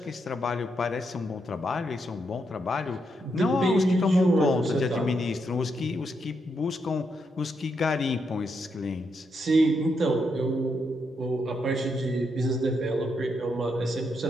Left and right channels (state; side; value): normal; both; correlation 0.80